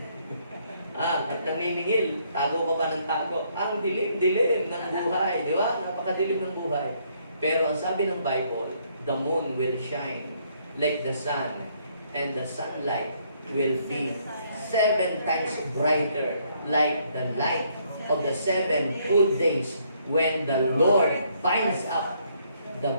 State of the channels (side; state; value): both; inverted; correlation -0.69